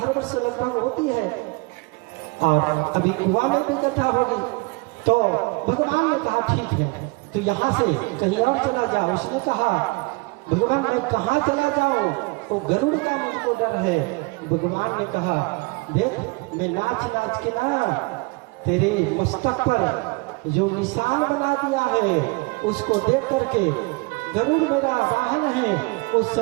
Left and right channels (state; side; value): quieter; left; 26.9 dB